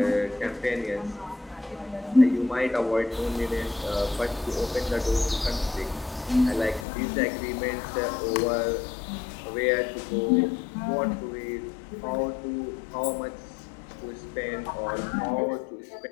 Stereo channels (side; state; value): right; drops out; at 6.9 s